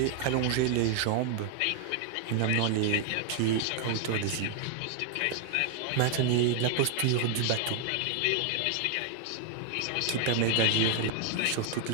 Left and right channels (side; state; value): both; different; correlation 0.00